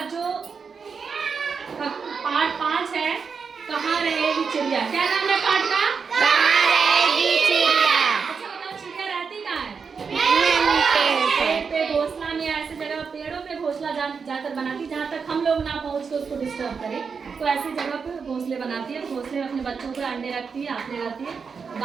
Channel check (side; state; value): left; quieter; 5.7 dB